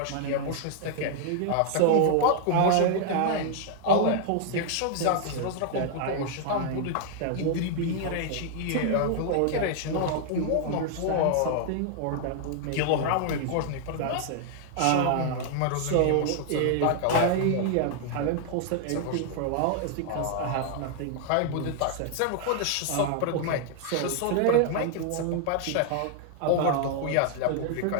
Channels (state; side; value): different; both; correlation 0.00